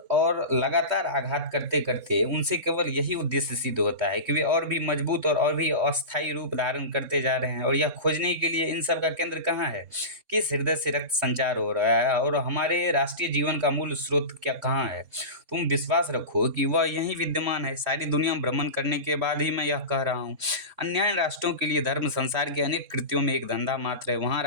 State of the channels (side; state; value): left; late; 3.6 ms